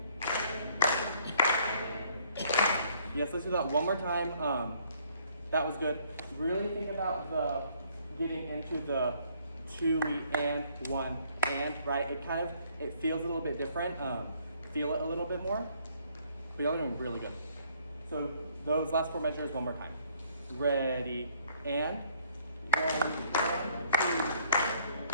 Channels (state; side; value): inverted; both; correlation -0.63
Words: Yes, let's do that one more time. That was good. Really think about the getting into the 2E and 1 and, right? It feels a little bit different. Feel it a little bit more. But y'all are doing really good. So those last 4 measures one more time. Ready and 1, 2.